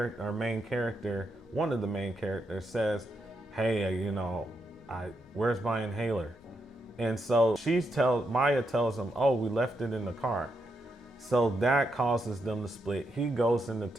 main character, one of the main characters, says, hey, where's my inhaler? And so Maya tells him, oh, we left it in the car. So that causes them to split. He goes into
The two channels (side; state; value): both; normal; correlation 0.82